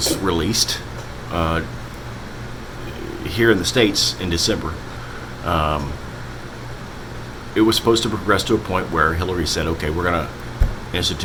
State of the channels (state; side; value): identical; both; correlation 1.00